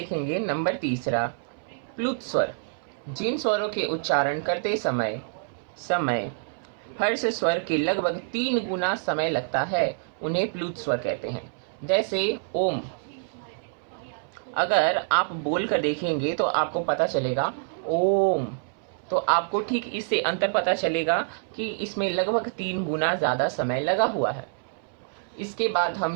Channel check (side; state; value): left; silent; 60 dB below the other